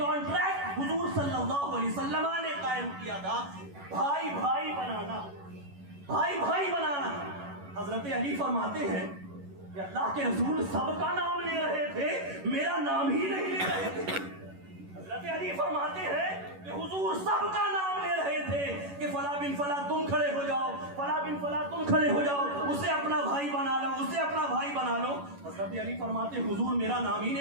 حضور صلی اللہ علیہ وسلم نے قائم کیا تھا, بھائی بھائی بنانا, بھائی بھائی بنانا. حضرت علی فرماتے ہیں کہ اللہ کے رسول سب کا نام لے رہے تھے, میرا نام ہی نہیں لے رہے تھے. حضرت علی فرماتے ہیں کہ حضور سب کا نام لے رہے تھے کہ فلاں بن فلاں تم کھڑے ہو جاؤ, فلاں بن فلاں تم کھڑے ہو جاؤ, اسے اپنا بھائی بنا لو, اسے اپنا بھائی بنا لو. حضرت علی فرماتے حضور میرا نام ہی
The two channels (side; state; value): left; late; 11 ms